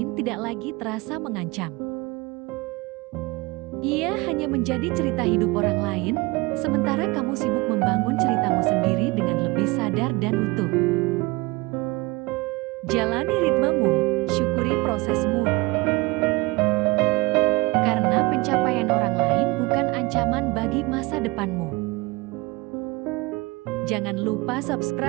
tidak lagi terasa mengancam. Ia hanya menjadi cerita hidup orang lain, sementara kamu sibuk membangun ceritamu sendiri dengan lebih sadar dan utuh. Jalani ritmemu, syukuri prosesmu. Karena pencapaian orang lain bukan ancaman bagi masa depanmu. Jangan lupa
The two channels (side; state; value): left; quieter; 23.6 dB